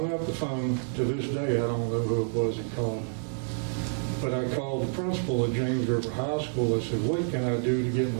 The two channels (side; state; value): left; silent; digital silence